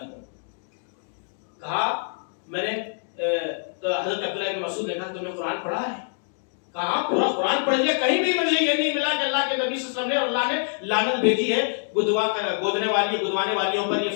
کہا میں نے، تو حضرت عبداللہ بن مسعود نے کہا تم نے قرآن پڑھا ہے؟ کہا پورا قرآن پڑھ لیا، کہیں بھی مجھے یہ نہیں ملا کہ اللہ کے نبی صلی اللہ علیہ وسلم نے اور اللہ نے لعنت بھیجی ہے گودنے والی، گدوانے والیوں پر، یہ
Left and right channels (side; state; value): right; silent; 62 dB below the other